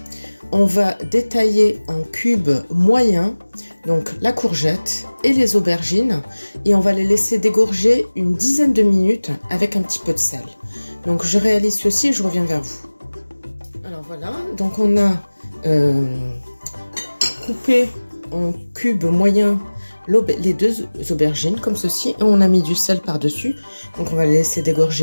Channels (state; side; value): inverted; both; correlation -1.00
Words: on va détailler en cubes moyens donc la courgette et les aubergines et on va les laisser dégorger une dizaine de minutes avec un petit peu de sel. Donc je réalise ceci et je reviens vers vous. Alors voilà, donc on a coupé en cubes moyens les 2 aubergines comme ceci et on a mis du sel par dessus. Donc on va les laisser